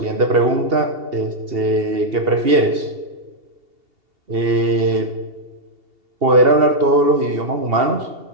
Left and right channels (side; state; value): left; late; 2.7 ms